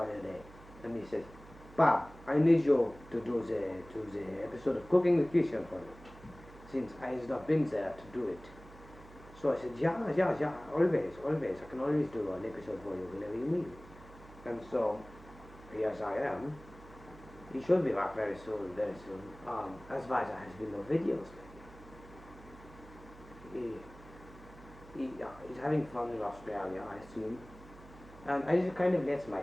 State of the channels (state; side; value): noise; right; hum, 19 dB below the sound